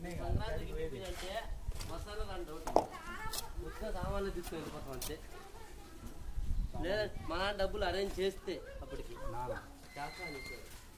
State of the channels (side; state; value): both; identical; correlation 1.00